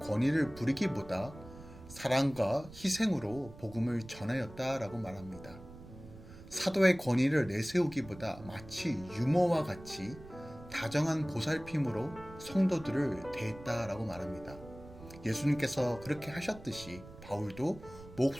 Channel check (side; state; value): right; noise; rumble, 17 dB below the sound